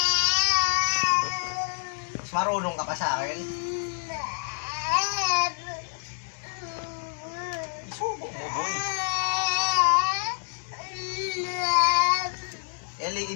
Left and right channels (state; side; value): silent; right; digital silence